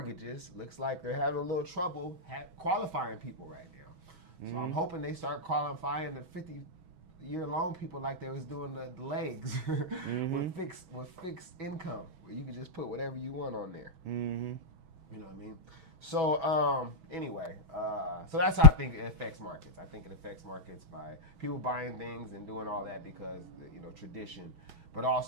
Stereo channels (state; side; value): late; left; 6.2 ms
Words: looks like they're having a little trouble qualifying people right now. So I'm hoping they start qualifying the 50-year loan people like they was doing the legs with fixed income, where you could just put whatever you want on there. You know what I mean? So anyway, so that's how I think it affects markets. I think it affects markets by people buying things and doing all that because, you know, tradition. But